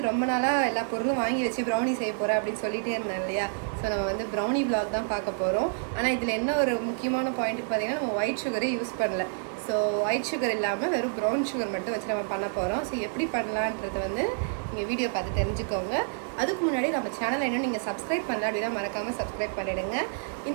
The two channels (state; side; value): silent; left; digital silence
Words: ரொம்ப நாளா எல்லா பொருளும் வாங்கி வச்சு brownie செய்ய போறேன் அப்படி சொல்லிட்டே இருந்தேன் இல்லையா. சோ நம்ம வந்து brownie vlog தான் பார்க்க போறோம். ஆனா இதுல என்ன ஒரு முக்கியமான பாயிண்ட் பாத்தீங்கன்னா நம்ம white sugar யூஸ் பண்ணல. ஸோ ஒயிட் சுகர் இல்லாமல் வெறும் ப்ரௌன் சுகர் மட்டும் வச்சு நம்ம பண்ண போகிறோம். ஸோ எப்படி பண்ணலான்றது வந்து நீங்கள் வீடியோ பார்த்து தெரிஞ்சுக்கோங்க. அதுக்கு முன்னாடி நம்ம சேனலை இன்னும் நீங்கள் சப்ஸ்கிரைப் பண்ணல அப்படின்னா மறக்காமல் சப்ஸ்கிரைப் பண்ணிவிடுங்க.